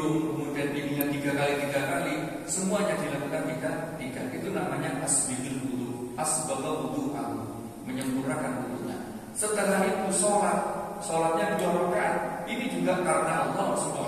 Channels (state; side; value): identical; both; correlation 1.00